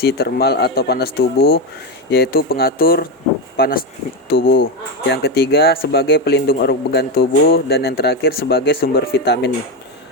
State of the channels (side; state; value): both; normal; correlation 0.12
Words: termal atau panas tubuh, yaitu pengatur panas tubuh. Yang ketiga, sebagai pelindung organ tubuh. Dan yang terakhir, sebagai sumber vitamin